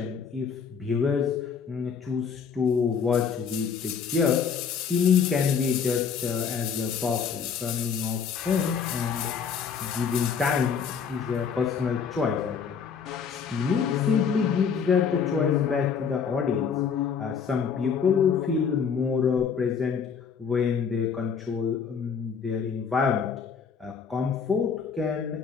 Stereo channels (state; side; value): quieter; right; 6.5 dB